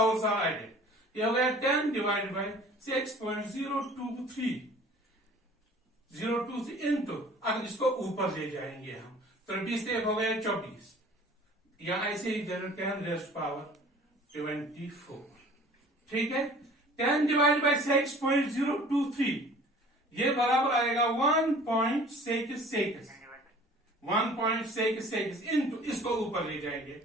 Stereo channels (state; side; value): normal; both; correlation 0.48